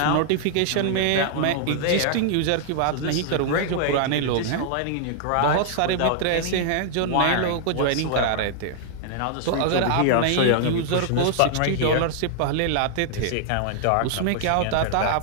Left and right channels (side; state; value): both; different; correlation -0.01